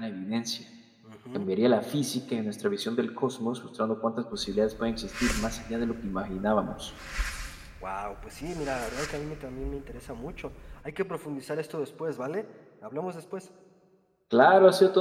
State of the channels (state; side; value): identical; both; correlation 1.00